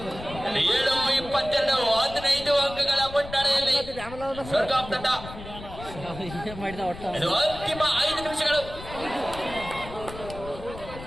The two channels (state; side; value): noise; left; rumble, 13 dB below the sound